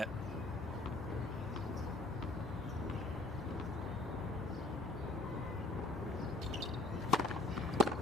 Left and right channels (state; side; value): normal; both; correlation 0.54